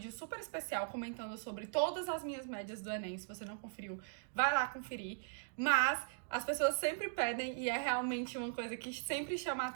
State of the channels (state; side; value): silent; left; digital silence